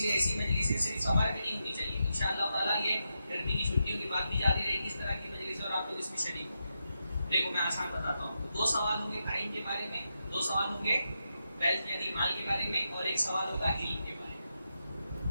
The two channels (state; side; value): inverted; both; correlation -0.86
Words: ایسی مجلسیں صرف سمر میں نہیں ہونی چاہیے۔ انشاءاللہ تعالیٰ یہ گرمی کی چھٹیوں کی بات بھی جاری رہے گی اس طرح کی مجلس، اور آپ لوگ اس میں شریک ہوں گے۔ دیکھو میں آسان بتاتا ہوں، 2 سوال ہوں گے ٹائم کے بارے میں، 2 سوال ہوں گے ویلتھ یعنی مال کے بارے میں، اور 1 سوال ہوگا علم کے بارے